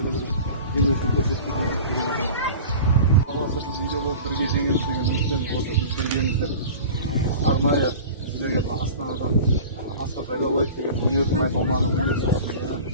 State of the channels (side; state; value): both; inverted; correlation -0.37